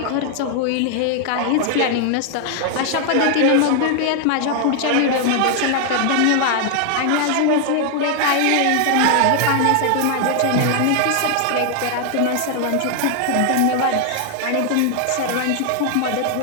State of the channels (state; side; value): different; both; correlation 0.00